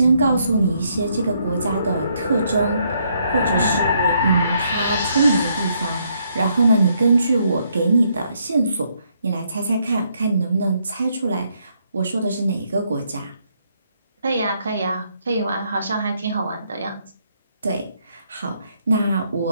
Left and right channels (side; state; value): both; inverted; correlation -0.73